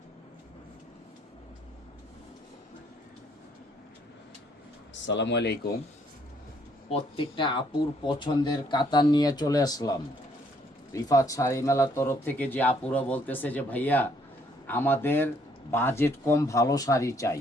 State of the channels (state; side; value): normal; both; correlation 0.66